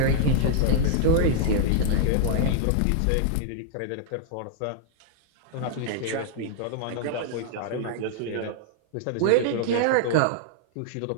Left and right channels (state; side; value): different; both; correlation -0.01